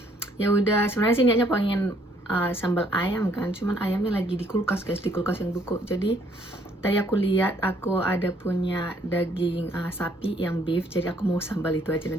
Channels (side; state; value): both; normal; correlation 0.65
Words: ya udah sebenarnya sih niatnya pengen sambal ayam kan, cuman ayamnya lagi di kulkas guys, di kulkas yang buku. Jadi tadi aku lihat aku ada punya daging sapi yang beef, jadi aku mau sambal itu aja.